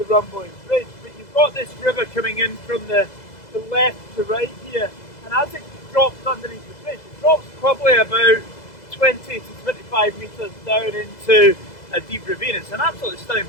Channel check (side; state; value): right; late; 2.0 ms